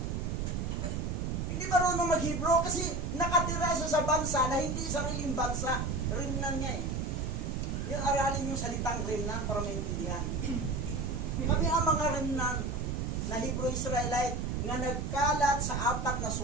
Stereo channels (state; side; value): noise; right; rumble, 1 dB below the sound